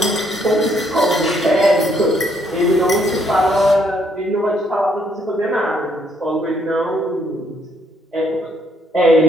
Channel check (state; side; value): normal; both; correlation 0.70